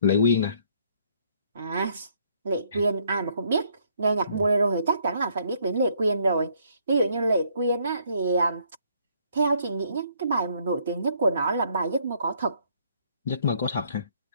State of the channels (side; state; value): both; inverted; correlation -0.66